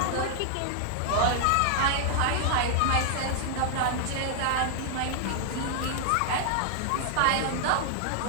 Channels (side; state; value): both; different; correlation -0.01